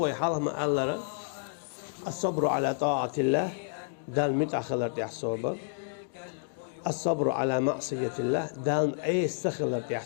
مع الله الصبر على طاعة الله دال متأخلر تح صبر الصبر على معصية الله دال أي استخلر تح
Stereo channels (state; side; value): silent; right; digital silence